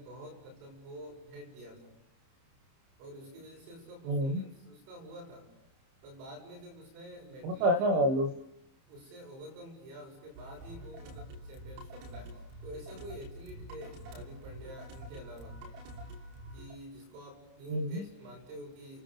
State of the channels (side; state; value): left; late; 30 ms